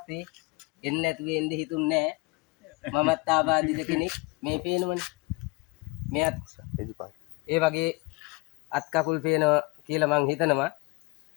එන්න නැතුව එන්න හිතුන්නේ නැහැ. මමත් ආබාධිත කෙනෙක් මේ පේනවනේ. මෙයත් ඒ වගේ අත් කකුල් පේනවා කියලා මං හිතනවා.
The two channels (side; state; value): right; quieter; 24.6 dB